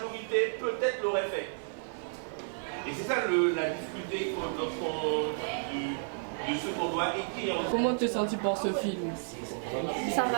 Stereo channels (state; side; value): silent; left; digital silence